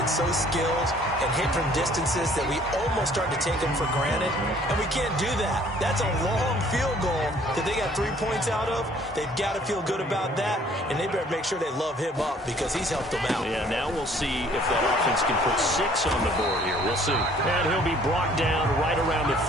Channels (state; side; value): normal; both; correlation 0.58